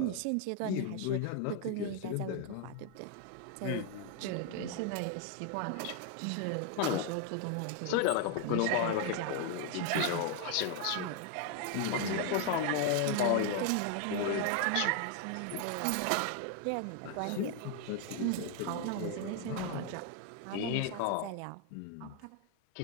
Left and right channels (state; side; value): different; both; correlation 0.00